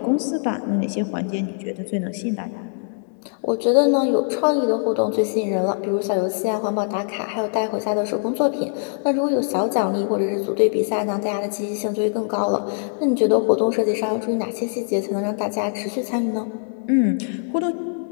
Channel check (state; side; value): silent; right; digital silence